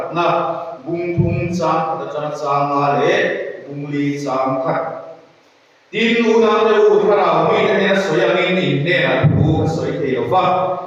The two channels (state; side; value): identical; both; correlation 1.00